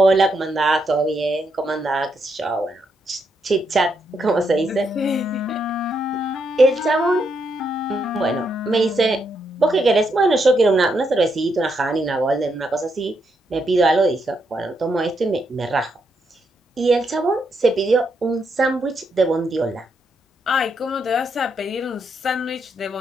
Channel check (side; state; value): both; normal; correlation 0.79